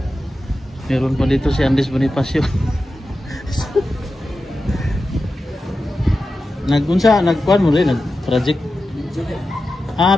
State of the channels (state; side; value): normal; both; correlation 0.92